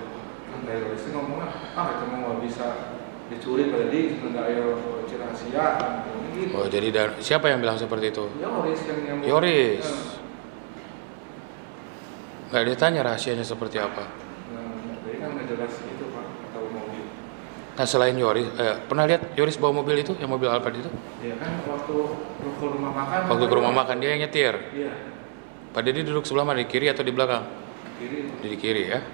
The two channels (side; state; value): left; silent; 57 dB below the other